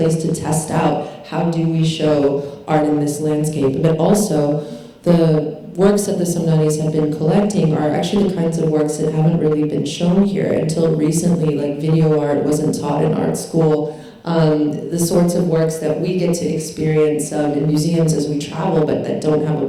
to test out how do we show art in this landscape. But also, the works that the Samdanis have been collecting are actually the kinds of works that haven't really been shown here until recently. Like video art wasn't taught in art school. The sorts of works that we get to experience in museums as we travel, but that don't have a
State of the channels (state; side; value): identical; both; correlation 1.00